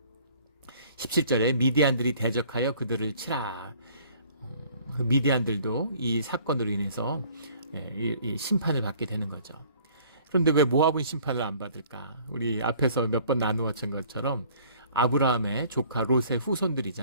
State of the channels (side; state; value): both; inverted; correlation -0.55